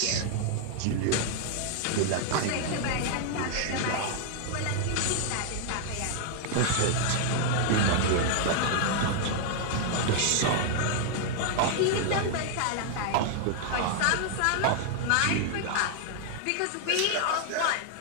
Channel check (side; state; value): both; different; correlation 0.00